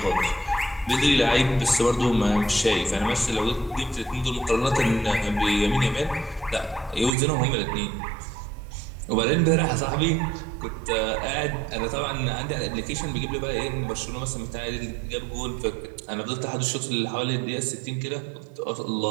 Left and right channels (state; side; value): drops out; left; at 7.1 s